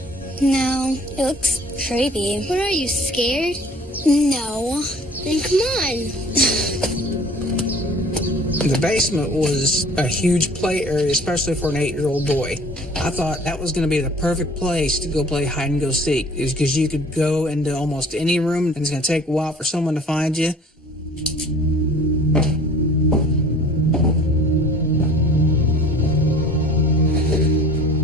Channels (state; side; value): normal; both; correlation 0.49